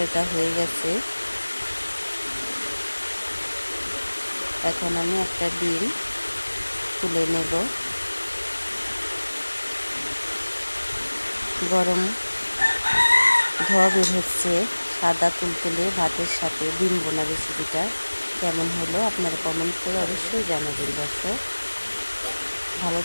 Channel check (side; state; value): both; inverted; correlation -1.00